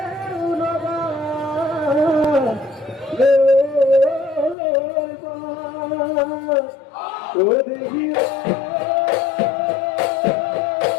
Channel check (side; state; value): right; drops out; at 4.5 s